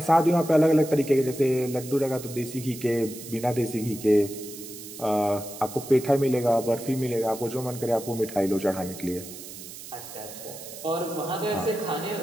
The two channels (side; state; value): right; noise; hiss, 13 dB below the sound